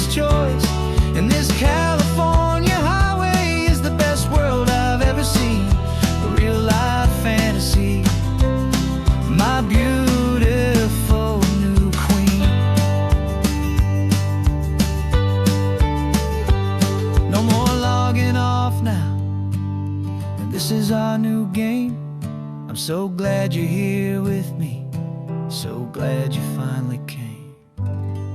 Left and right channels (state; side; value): identical; both; correlation 1.00